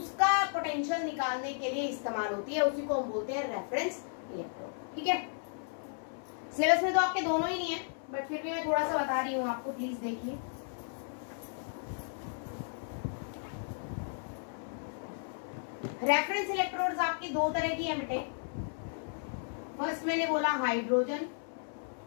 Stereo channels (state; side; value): silent; right; 55 dB below the other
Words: पोटेंशियल निकालने के लिए इस्तेमाल होती है। उसी को हम बोलते हैं रेफरेंस इलेक्ट्रोड। ठीक है, सिलेबस में तो आपके दोनों ही नहीं है, बट फिर भी मैं थोड़ा सा बता रही हूँ आपको, प्लीज देखिए। रेफरेंस इलेक्ट्रोड्स आपकी 2 तरह की है बेटे। फर्स्ट मैंने बोला hydrogen,